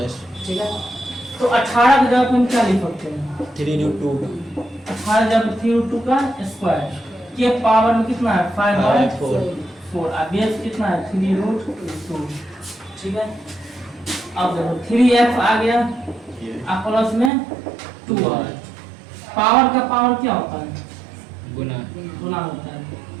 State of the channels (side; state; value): left; drops out; at 17.3 s